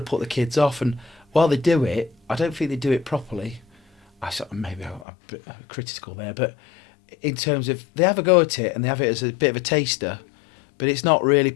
to put the kids off. And while they do it, I don't think they do it properly. Maybe I'm a bit critical there, but in terms of they have a go at it and they have it as a bit of a taster, but it's not really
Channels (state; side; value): drops out; right; at 5.1 s